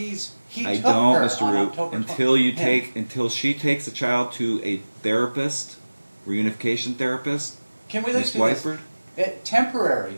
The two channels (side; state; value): both; inverted; correlation -1.00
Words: I took don't, her Mr. on Root, October until she takes the child to a therapist, reunification therapist, Can we Miss look at Whiteford. temporary